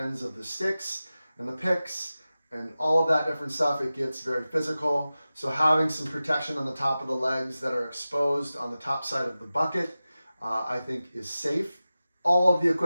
of the sticks and the picks and all of that different stuff. It gets very physical. So having some protection on the top of the legs that are exposed on the top side of the bucket, I think is safe. All of the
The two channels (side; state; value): both; inverted; correlation -0.95